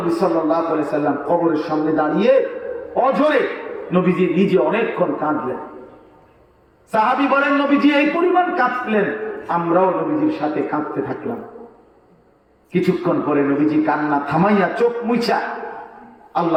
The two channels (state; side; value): identical; both; correlation 1.00